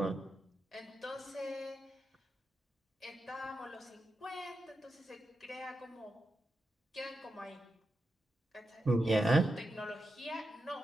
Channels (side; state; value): both; normal; correlation 0.88